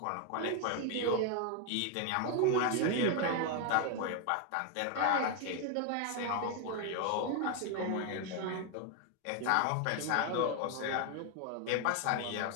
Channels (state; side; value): different; both; correlation 0.01